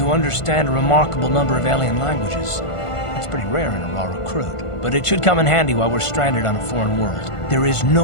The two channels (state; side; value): late; right; 1.5 ms